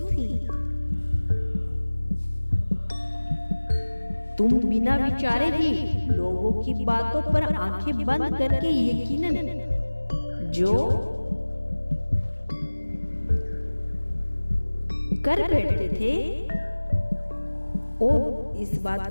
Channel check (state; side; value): inverted; both; correlation -1.00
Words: थी। तुम बिना विचारे ही लोगों की बातों पर आंखें बंद करके यकीनन जो कर बैठते थे और इस बात